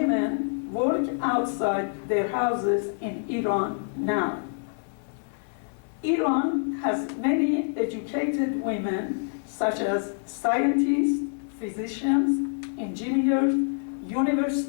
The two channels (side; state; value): right; silent; 60 dB below the other